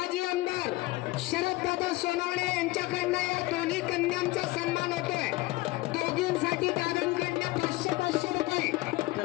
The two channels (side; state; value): right; quieter; 20.0 dB